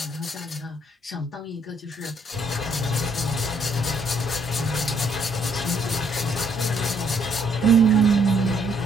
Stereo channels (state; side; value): normal; both; correlation 0.68